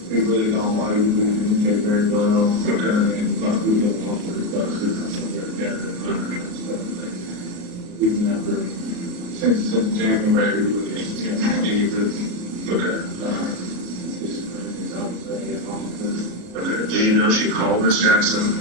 we really don't argue. We communicate very well. Okay. And like we get along with stuff together. We've never, since January, we really haven't had any really. Okay. Okay. Do you know she called Miss Jackson?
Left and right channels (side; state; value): left; late; 33 ms